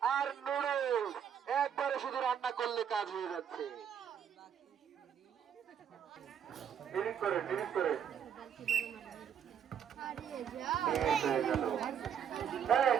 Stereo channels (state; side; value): quieter; left; 8.4 dB